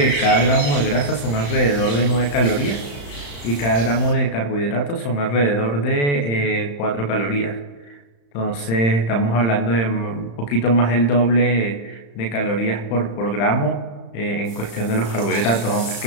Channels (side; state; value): right; late; 35 ms